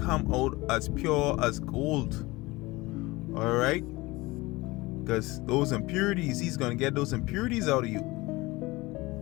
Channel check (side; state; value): right; quieter; 21.4 dB